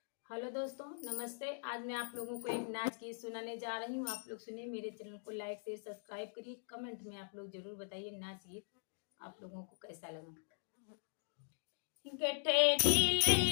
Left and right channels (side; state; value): right; silent; digital silence